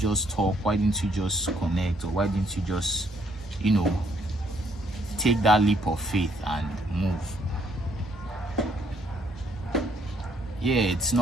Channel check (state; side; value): normal; both; correlation 0.69